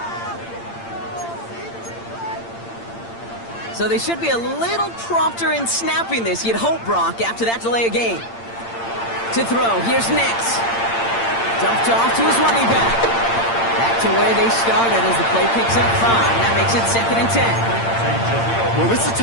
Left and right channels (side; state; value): right; late; 8.8 ms